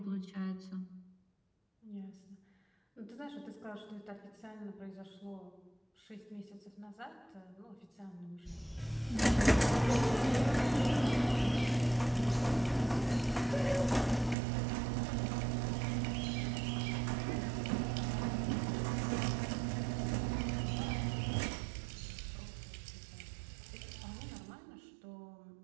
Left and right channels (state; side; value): drops out; left; at 14.4 s